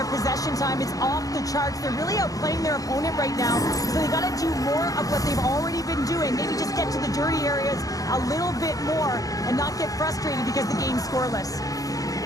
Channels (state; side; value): late; right; 0.17 ms